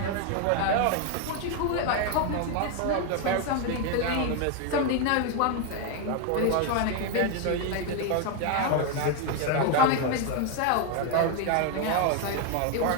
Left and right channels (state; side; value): different; both; correlation 0.01